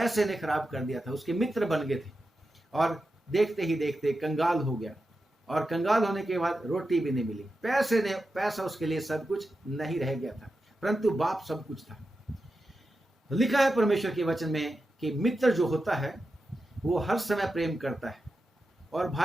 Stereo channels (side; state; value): both; normal; correlation 0.90